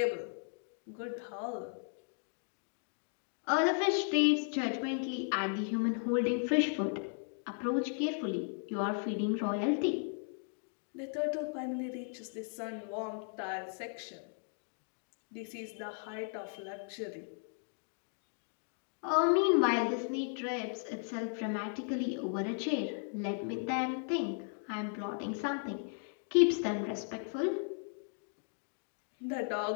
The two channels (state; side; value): silent; right; 54 dB below the other